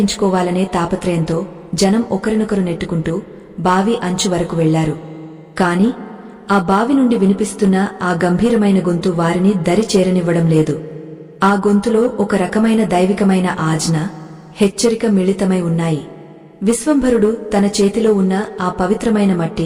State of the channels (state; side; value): identical; both; correlation 1.00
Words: తాపత్రయంతో జనం ఒకరినొకరు నెట్టుకుంటూ బావి అంచు వరకు వెళ్లారు. కాని ఆ బావి నుండి వినిపిస్తున్న ఆ గంభీరమైన గొంతు వారిని దరి చేరనివ్వడం లేదు. ఆ గొంతులో ఒక రకమైన దైవికమైన ఆజ్ఞ, హెచ్చరిక మిళితమై ఉన్నాయి. విశ్వంభరుడు తన చేతిలో ఉన్న ఆ పవిత్రమైన